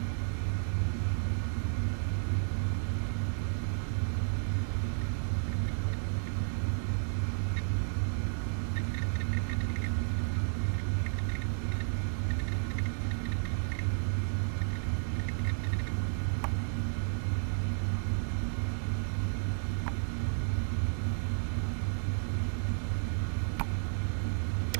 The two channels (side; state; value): left; silent; digital silence